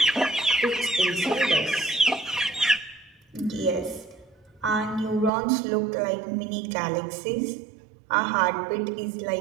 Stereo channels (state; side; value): drops out; left; at 5.3 s